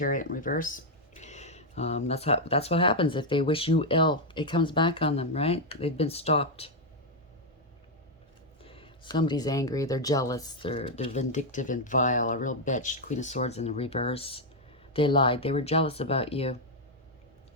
in reverse. That's what happens if they wish you ill. It comes back on them, right? They've been stopped. Somebody's angry. They're jealous. They're vindictive and vile. A real bitch. Queen of Swords in the reverse. They lied. They were jealous about you.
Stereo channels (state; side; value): normal; both; correlation 0.01